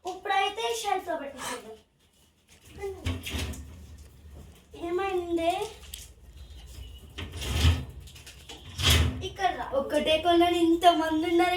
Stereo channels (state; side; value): identical; both; correlation 1.00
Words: ఇప్పుడైతే షెల్ఫ్లో పెట్టేసాం. ఏమైంది? ఇక్కడ రా. ఒక్కటే కొన్నాను, ఇంతమంది ఉన్నారు,